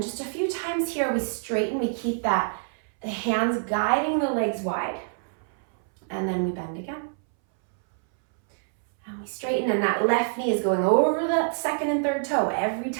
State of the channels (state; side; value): silent; left; 61 dB below the other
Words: just a few times here, we straighten, we keep the hands guiding the legs wide. And then we bend again. And we straighten, and that left knee is going over the second and third toe every